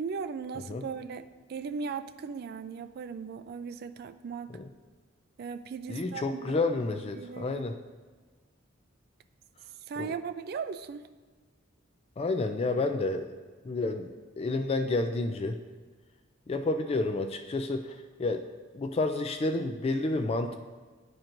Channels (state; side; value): normal; both; correlation 0.45